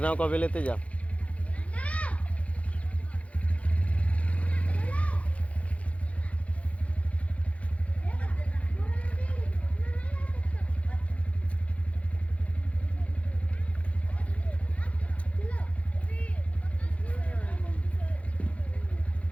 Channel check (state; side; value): late; right; 0.064 ms